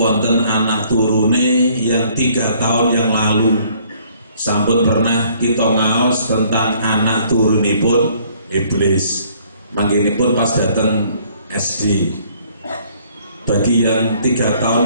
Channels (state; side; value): inverted; both; correlation -0.61